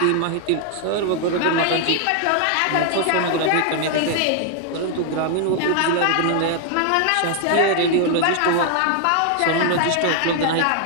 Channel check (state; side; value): different; both; correlation 0.00